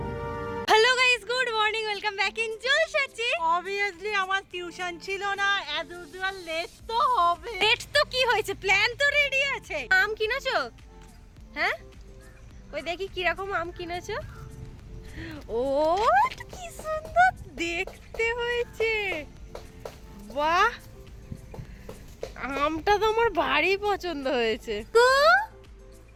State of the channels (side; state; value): both; identical; correlation 1.00